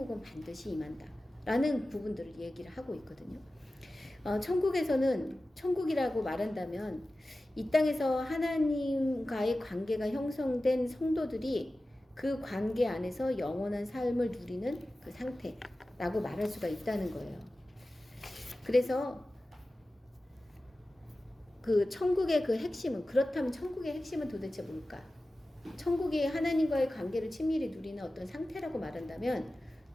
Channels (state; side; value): normal; both; correlation 0.95